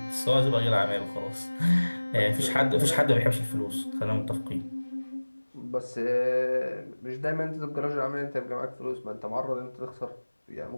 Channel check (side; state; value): both; inverted; correlation -1.00